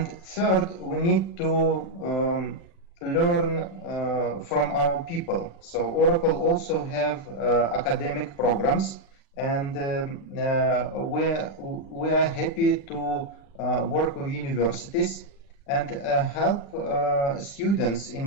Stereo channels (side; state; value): right; late; 36 ms